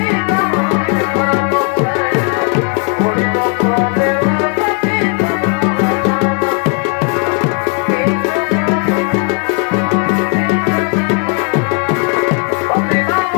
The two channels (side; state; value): right; quieter; 34.5 dB